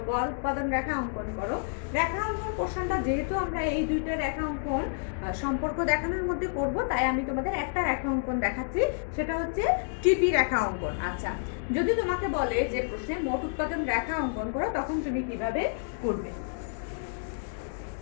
গড় উৎপাদন রেখা অঙ্কন করো। রেখা অঙ্কন প্রশ্নটা যেহেতু আমরা এই দুইটা রেখা অঙ্কন সম্পর্ক দেখানোর মধ্যে করব, তাই আমি তোমাদের একটা রেখা অঙ্কন দেখাচ্ছি, সেটা হচ্ছে টিপি রেখা অঙ্কন। আচ্ছা, যদি তোমাকে বলে যে প্রশ্নে মোট উৎপাদন রেখা অঙ্কন করো, তখন তুমি কিভাবে করবে?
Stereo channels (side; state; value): right; silent; digital silence